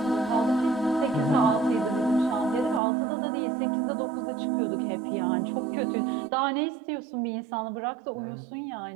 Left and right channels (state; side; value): drops out; left; at 2.8 s